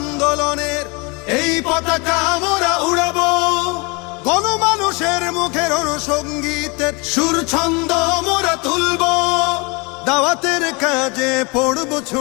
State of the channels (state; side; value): quieter; right; 29.3 dB